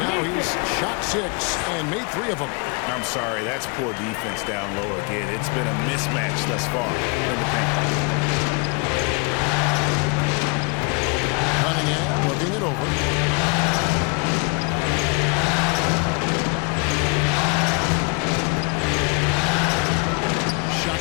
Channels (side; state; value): right; quieter; 31.9 dB